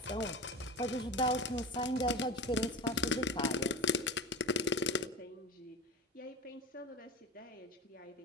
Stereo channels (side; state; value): both; normal; correlation 0.28